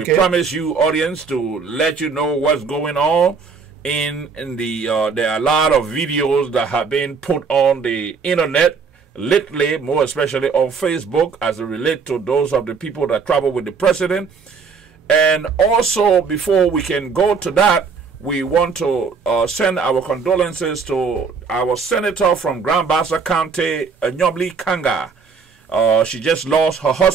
promise you, audience, to let you know what's going on. In the there are a lot of videos that have been put on the internet lately, more especially on Facebook, as it relates to those of the people that travel with the president. And also, before we can go to that, we want to send our condolences to our senator from Grand Bassa County, Nyobli Kanga. She just lost her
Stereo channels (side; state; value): left; quieter; 5.4 dB